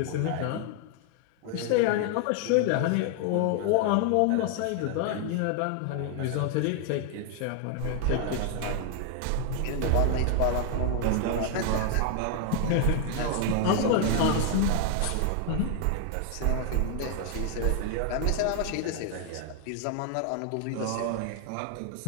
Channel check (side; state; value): both; different; correlation 0.00